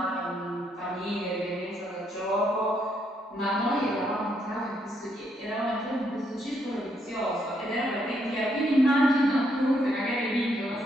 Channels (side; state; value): both; normal; correlation 0.75